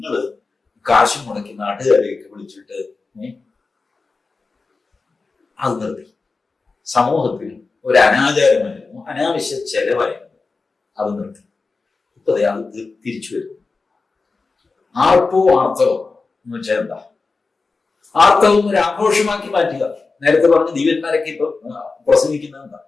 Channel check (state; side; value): quieter; right; 4.1 dB